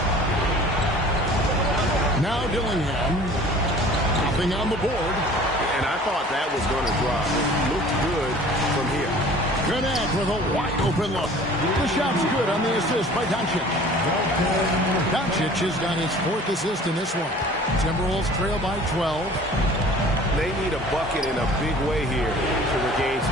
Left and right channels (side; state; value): both; normal; correlation 0.47